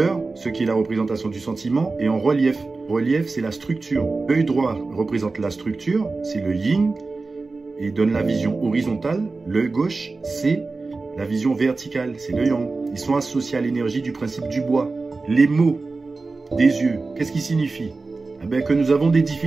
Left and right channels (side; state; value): left; quieter; 3.8 dB